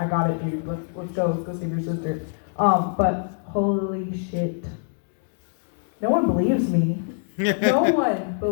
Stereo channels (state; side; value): silent; right; digital silence